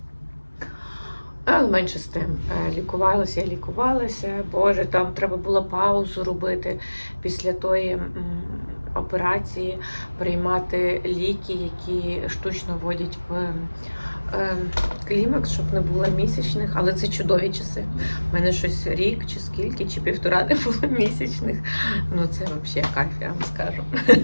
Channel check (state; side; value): inverted; both; correlation -1.00